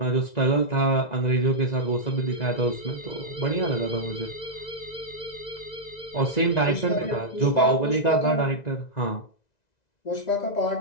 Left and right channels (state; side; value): late; right; 1.9 ms